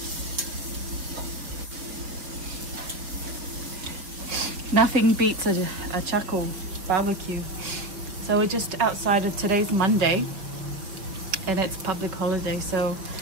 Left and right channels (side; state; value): left; late; 5.4 ms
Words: Nothing beats a charcoal barbecue. So we're just outside of today's Monday and it's public holiday, so